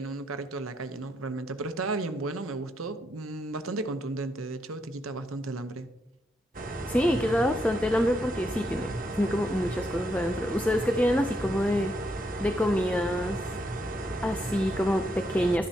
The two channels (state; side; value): normal; both; correlation 0.79